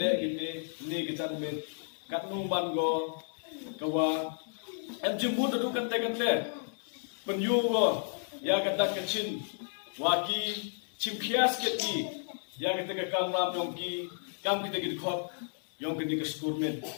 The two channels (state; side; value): silent; right; digital silence